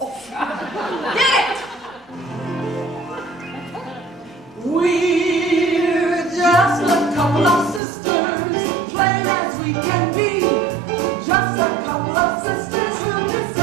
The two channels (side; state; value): left; drops out; at 7.8 s